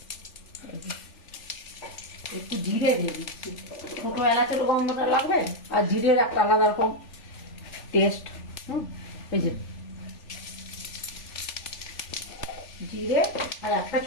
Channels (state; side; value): late; right; 3.4 ms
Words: একটু জিরে দিয়ে দিচ্ছি। ছোট এলাচের গন্ধটা লাগবে, আর জিরের একটা আলাদা রকম টেস্ট। এই যে জিরে আর একটা